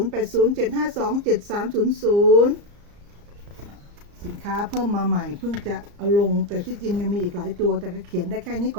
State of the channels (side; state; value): left; late; 34 ms